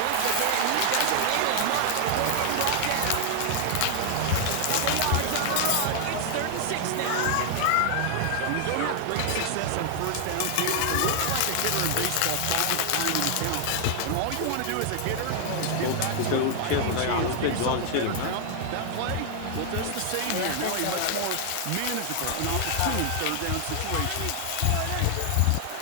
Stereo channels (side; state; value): both; different; correlation 0.00